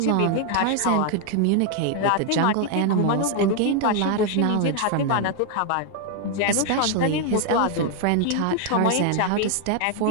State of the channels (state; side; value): different; both; correlation 0.00